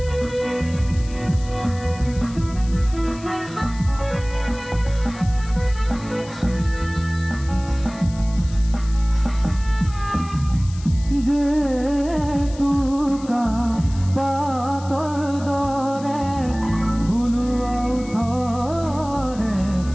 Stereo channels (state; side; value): noise; left; hiss, 19 dB below the sound